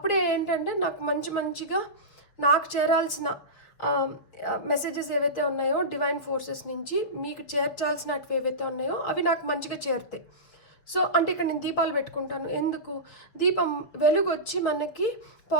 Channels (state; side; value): late; right; 6.2 ms